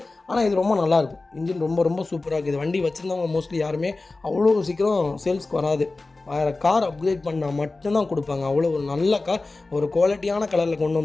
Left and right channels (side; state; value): right; quieter; 3.4 dB